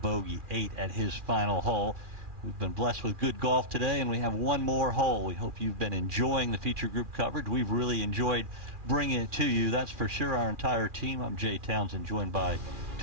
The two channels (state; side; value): late; left; 2.4 ms